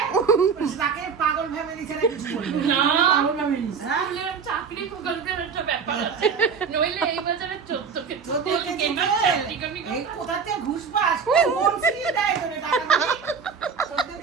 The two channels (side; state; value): left; quieter; 6.0 dB